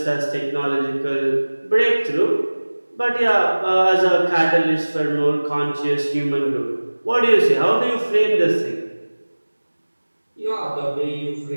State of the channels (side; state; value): both; inverted; correlation -1.00